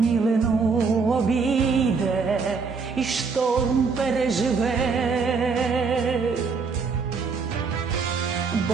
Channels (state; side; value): quieter; left; 5.0 dB